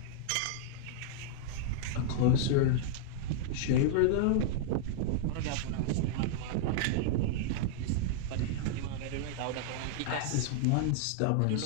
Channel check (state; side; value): different; both; correlation -0.01